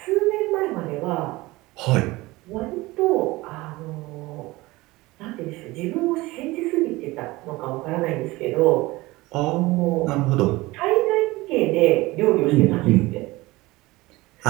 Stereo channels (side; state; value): left; quieter; 20.5 dB